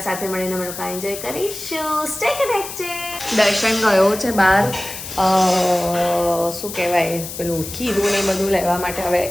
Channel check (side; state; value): left; noise; hiss, 9 dB below the sound